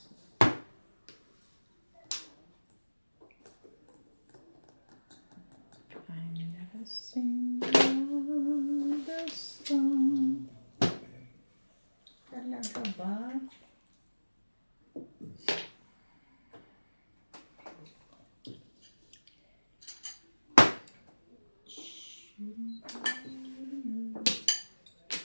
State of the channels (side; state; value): both; inverted; correlation -1.00